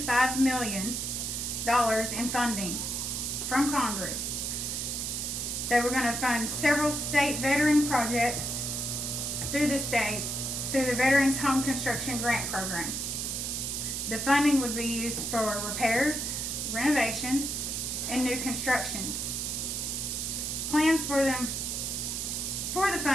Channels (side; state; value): right; noise; hiss, 2 dB below the sound